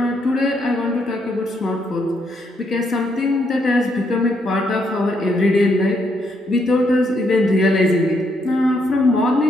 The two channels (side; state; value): both; normal; correlation 0.75